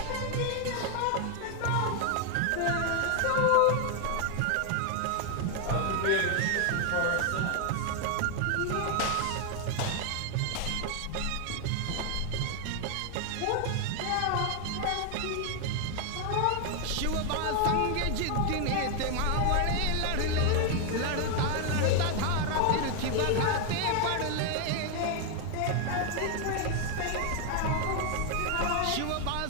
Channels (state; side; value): different; both; correlation 0.01